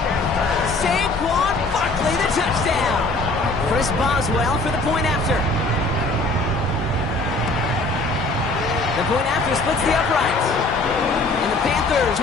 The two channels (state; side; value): quieter; right; 3.1 dB